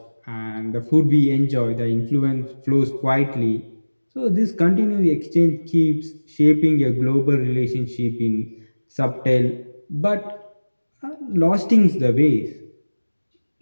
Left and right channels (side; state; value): both; inverted; correlation -1.00